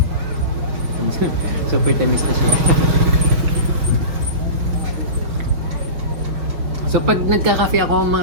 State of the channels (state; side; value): late; left; 5.9 ms